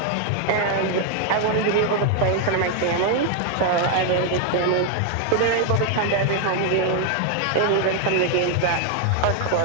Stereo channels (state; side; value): different; both; correlation 0.00